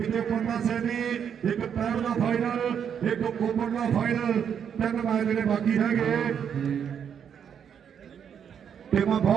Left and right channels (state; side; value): quieter; left; 8.0 dB